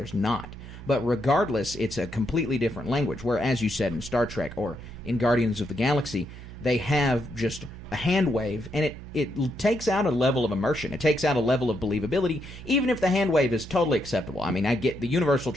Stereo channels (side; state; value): right; noise; hum, 14 dB below the sound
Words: not. But regardless, it's a completely different language, where, as you said, in Star Trek or in Guardians of the Galaxy, they have just a hand wave, and it takes out a level of immersion. It takes out a level of believability, even if the hand wave is totally acceptable. I mean, I get the universal